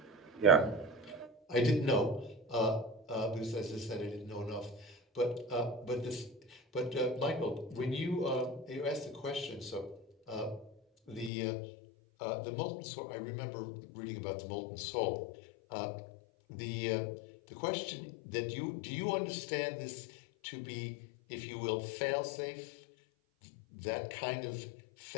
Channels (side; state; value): right; drops out; at 11.3 s